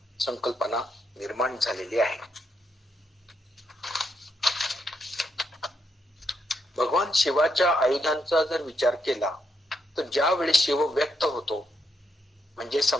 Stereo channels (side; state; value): both; normal; correlation 0.78